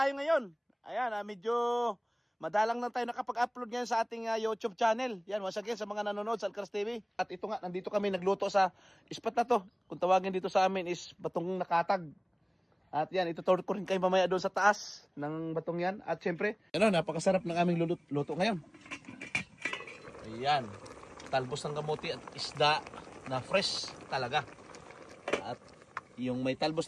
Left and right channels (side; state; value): both; identical; correlation 1.00